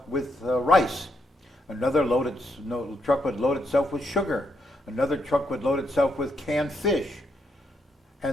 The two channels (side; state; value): both; normal; correlation 0.78